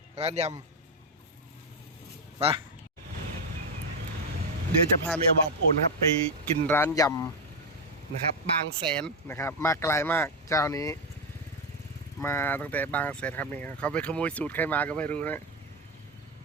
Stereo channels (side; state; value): both; normal; correlation 0.07